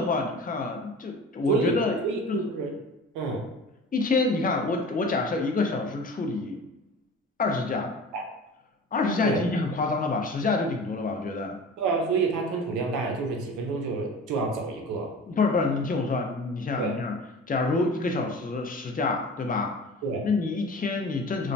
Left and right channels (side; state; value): both; normal; correlation 0.38